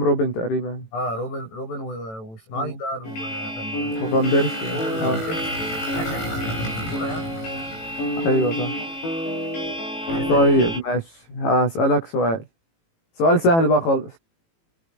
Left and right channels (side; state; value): right; late; 18 ms